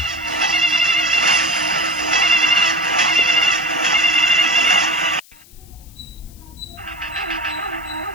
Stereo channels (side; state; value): left; noise; hiss, 25 dB below the sound